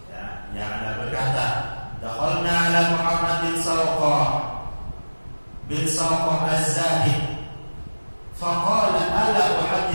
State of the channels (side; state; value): both; inverted; correlation -1.00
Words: ya, Ya'la berkata, dakhalna ala Muhammad bin Sawqah az-Zahid faqala ala